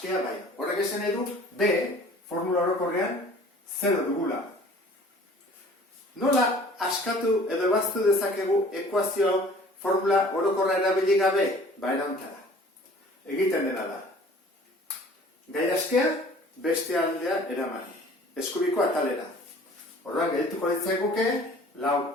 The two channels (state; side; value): normal; both; correlation 0.50